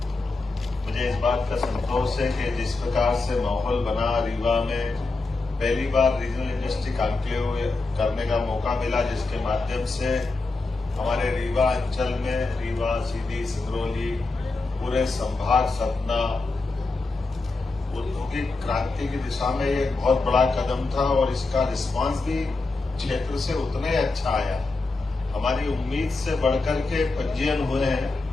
मुझे इस बात का संतोष है कि जिस प्रकार से माहौल बना रीवा में, पहली बार रीजनल इंडस्ट्री कॉन्क्लेव करने का मौका मिला, जिसके माध्यम से हमारे रीवा अंचल में, रीवा, सीधी, सिंगरौली, पूरे संभाग सतना औद्योगिक क्रांति की दिशा में ये एक बहुत बड़ा कदम था और इसका रिस्पांस भी क्षेत्र से उतना ही अच्छा आया। हमारी उम्मीद से बढ़कर के पंजीयन हुए हैं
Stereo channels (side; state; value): right; quieter; 3.5 dB